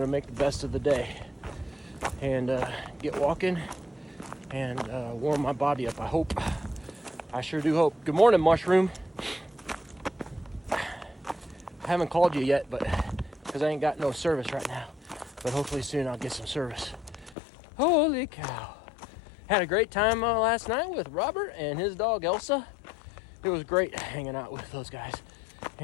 to make the best of the day and get walking and warm my body up. I hope. I sure do hope. Good morning, Mushroom. I haven't called you yet, but because I ain't got no service right now. But hopefully soon I'll get some service. Holy cow. Had a great time last night with Robert and his dog Elsa. It was great hanging out with those guys.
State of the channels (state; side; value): drops out; right; at 17.4 s